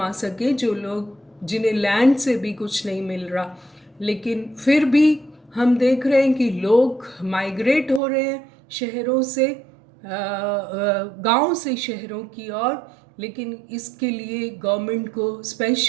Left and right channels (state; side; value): drops out; left; at 8.0 s